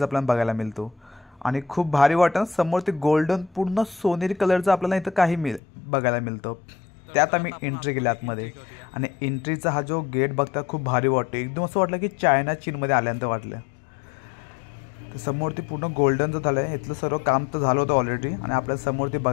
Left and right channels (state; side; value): drops out; right; at 5.6 s